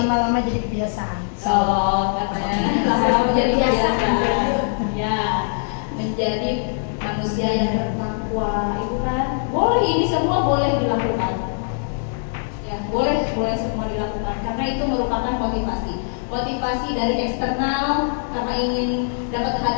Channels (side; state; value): right; silent; digital silence